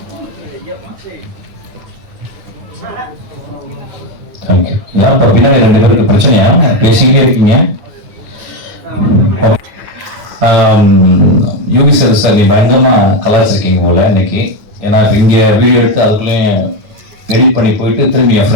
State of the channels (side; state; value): left; late; 9.5 ms